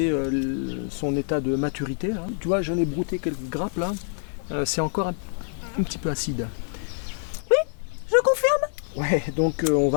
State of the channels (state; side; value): silent; right; 55 dB below the other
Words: son état de maturité, là. Tu vois, j'en ai brouté quelques grappes là. C'est encore un petit peu acide. Je confirme. Ouais, donc on